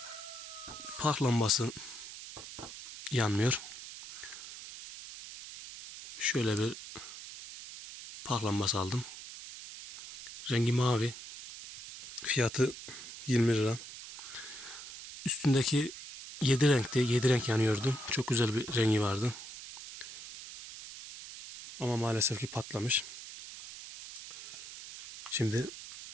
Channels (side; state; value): right; noise; hiss, 12 dB below the sound